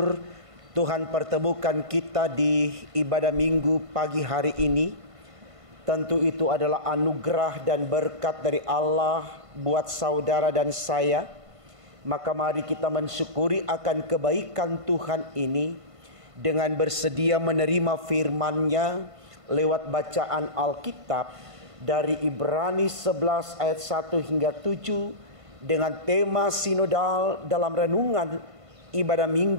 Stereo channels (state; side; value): late; left; 1.5 ms